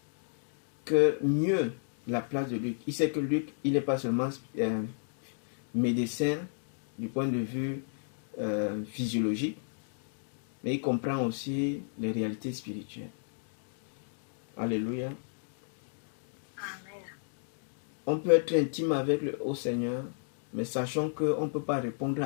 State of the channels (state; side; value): silent; right; digital silence